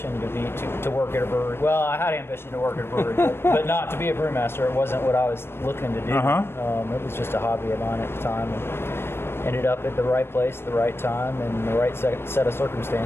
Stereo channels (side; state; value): right; late; 0.12 ms